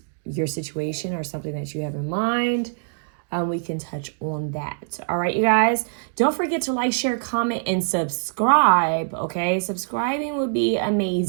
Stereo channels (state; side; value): silent; left; digital silence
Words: your situation or something that you have in mind. We can touch on that. All right, you guys, don't forget to like, share, comment, and subscribe, okay? Subscribing would be